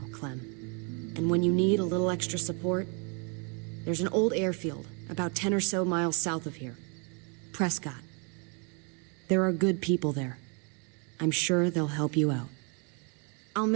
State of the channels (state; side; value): quieter; left; 36.1 dB